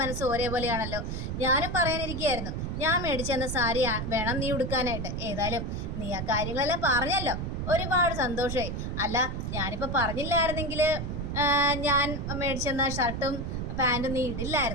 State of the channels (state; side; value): noise; right; rumble, 4 dB below the sound